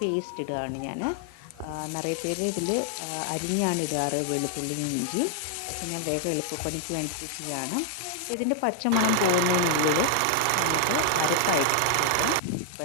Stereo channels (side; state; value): both; different; correlation 0.00